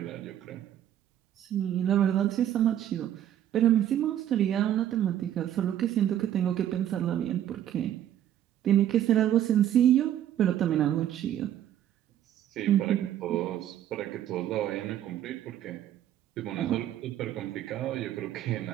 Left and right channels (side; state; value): left; quieter; 11.2 dB